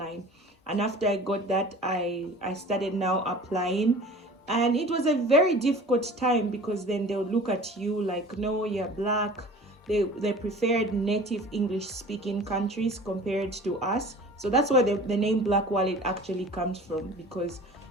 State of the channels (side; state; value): both; normal; correlation 0.42